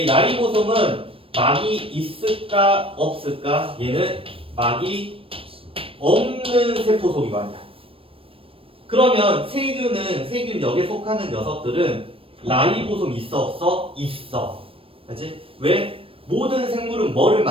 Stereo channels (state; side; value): late; left; 0.27 ms